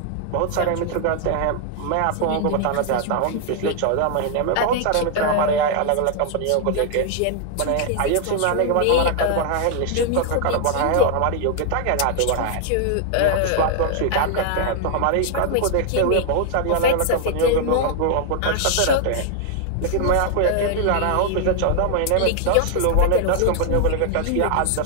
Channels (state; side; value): different; both; correlation 0.00